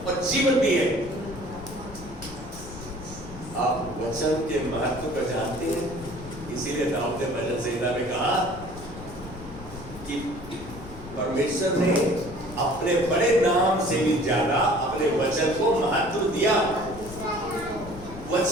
और जीवन भी है। आप वचन के महत्व को जानते हैं, इसीलिए दाऊद ने भजन संहिता में कहा कि परमेश्वर ने अपने बड़े नाम से भी ज्यादा अपने वचन को महत्व दिया।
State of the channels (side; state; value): left; noise; rumble, 14 dB below the sound